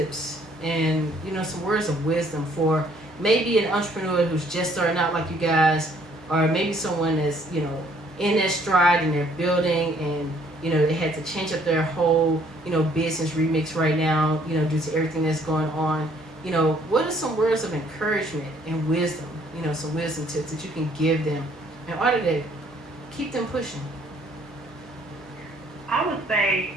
and, you know, some words of wisdom for maybe an entrepreneur who's just starting out like you guys, or maybe someone that's, you know, in their stride and they're building and, you know, they had to change up their whole, you know, business remix right now, you know, due to everything that's going on. You know, what are some words of encouragement and wisdom, you know, some wisdom tips that you can give them in order to keep them pushing? I would say,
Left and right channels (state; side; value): normal; both; correlation 0.63